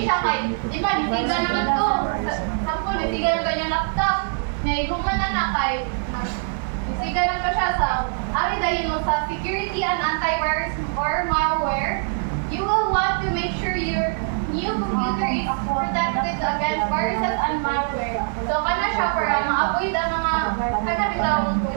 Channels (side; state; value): left; silent; digital silence